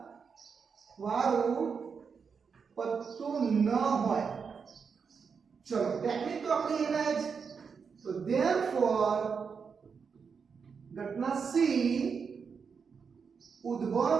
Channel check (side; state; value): left; quieter; 5.9 dB